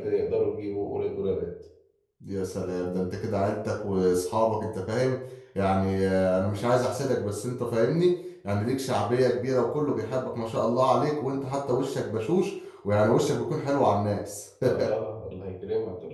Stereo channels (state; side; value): identical; both; correlation 1.00